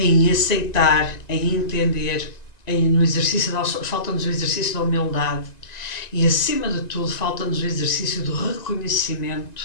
aceitar, em entender, no exercício falta-nos o exercício da humildade e, acima de tudo, falta-nos o exercício do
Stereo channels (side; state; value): right; late; 1.9 ms